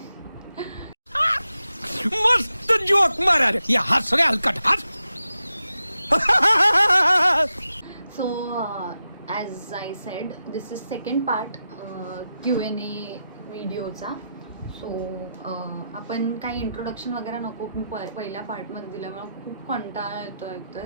मस्त जोक मारा रे. या हस रे हलकट हस. So as I said this is second part Q&A व्हिडिओचा. सो आपण काही इंट्रोडक्शन वगैरे नको. मी पहिल्या पार्टमध्ये दिल्यामुळे खूप कंटाळा येतो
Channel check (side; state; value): both; inverted; correlation -0.89